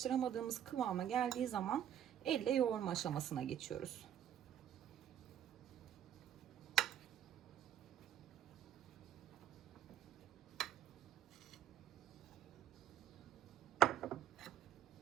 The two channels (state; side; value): quieter; left; 10.6 dB